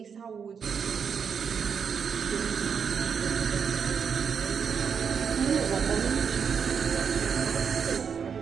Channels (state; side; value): quieter; left; 6.7 dB